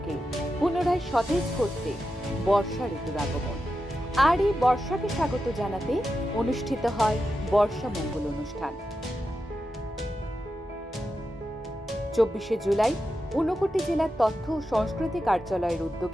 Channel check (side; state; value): both; normal; correlation 0.89